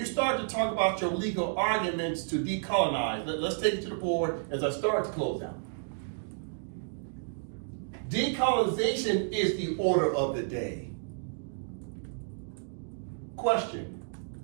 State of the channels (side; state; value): left; silent; digital silence